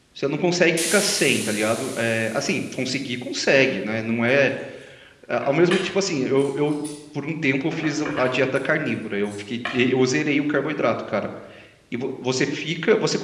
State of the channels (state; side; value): identical; both; correlation 1.00